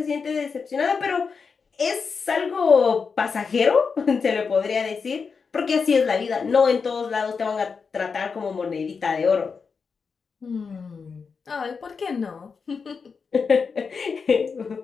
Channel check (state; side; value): quieter; right; 5.4 dB